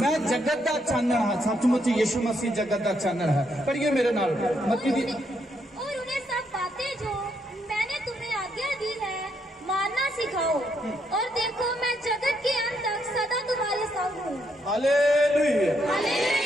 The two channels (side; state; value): both; normal; correlation 0.76